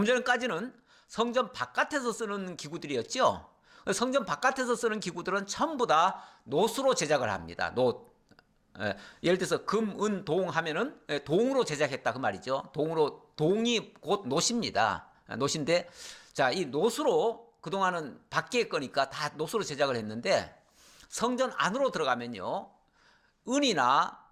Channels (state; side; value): identical; both; correlation 1.00